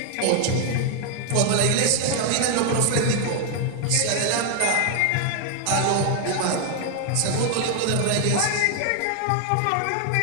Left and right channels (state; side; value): different; both; correlation 0.00